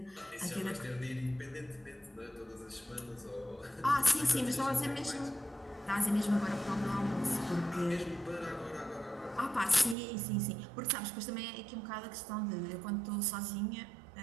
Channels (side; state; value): left; drops out; at 10.0 s